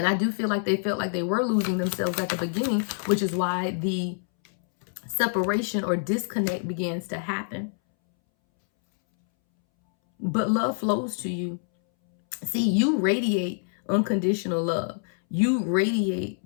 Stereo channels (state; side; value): silent; right; 61 dB below the other